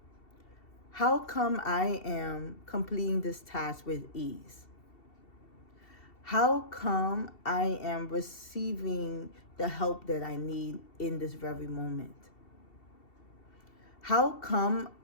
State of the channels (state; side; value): late; right; 2.7 ms